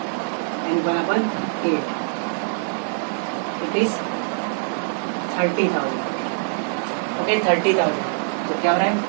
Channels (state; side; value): silent; left; digital silence